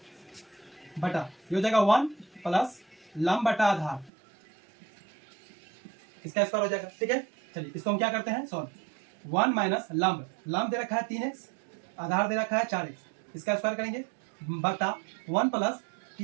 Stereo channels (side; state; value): left; drops out; at 4.1 s